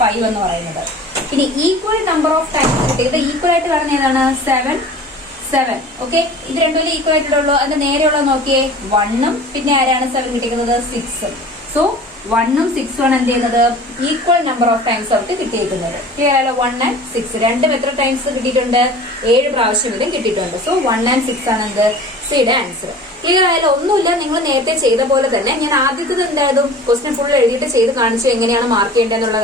എന്ന് പറയുന്നത്. ഇനി ഈക്വൽ നമ്പർ ഓഫ് ടൈംസ് കിട്ടിയത് ഈക്വൽ ആയിട്ട് വരുന്ന ഏതാണ്? 7. ഓക്കെ, ഇത് രണ്ടും ഈക്വൽ ആയിട്ടുള്ളൂ. അതിന്റെ നേരെയുള്ളത് നോക്കിയേ 1ഉം പിന്നെ ആരാണ് 7 കിട്ടിയിരിക്കുന്നത്? 6ഉം. സോ 1ഉം 6ഉം ആണ് എന്ത് ചെയ്യുന്നത്? ഈക്വൽ നമ്പർ ഓഫ് ടൈംസ് അവർക്ക് കിട്ടിയിരിക്കുന്നത്. ക്ലിയർ ആയാലോ? 1 and 6 രണ്ടും എത്ര ടൈംസ് കിട്ടിയിട്ടുണ്ട്? 7 പ്രാവശ്യം ഇതും കിട്ടിയിട്ടുണ്ട്. സോ 1 and 6 ആണ് എന്ത്? സിയുടെ ആൻസർ. ക്ലിയർ ആയാലും ഒന്നുമില്ല, നിങ്ങൾ നേരത്തെ ചെയ്ത പോലെ തന്നെ ഞാൻ ആദ്യത്തെ എന്തായാലും ക്വസ്റ്റ്യൻ ഫുൾ എഴുതിയിട്ട് ചെയ്ത് കാണിച്ചു എങ്ങനെയാണ് മാർക്ക് ചെയ്യേണ്ടതെന്നുള്ള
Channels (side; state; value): both; normal; correlation 0.42